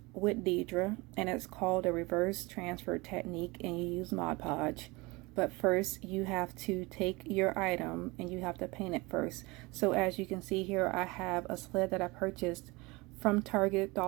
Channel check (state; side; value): quieter; left; 24.2 dB